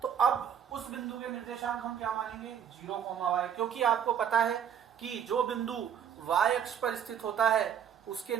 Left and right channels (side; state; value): left; quieter; 8.5 dB